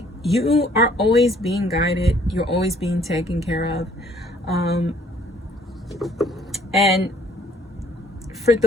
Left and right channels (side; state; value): both; normal; correlation 0.60